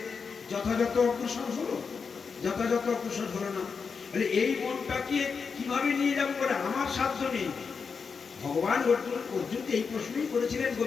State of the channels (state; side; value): quieter; right; 5.5 dB